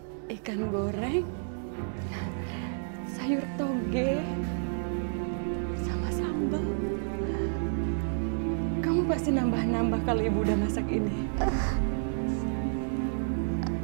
ikan goreng, sayur toge, sama sambal. Kamu pasti nambah-nambah kalau Ibu udah masak ini.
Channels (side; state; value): left; silent; digital silence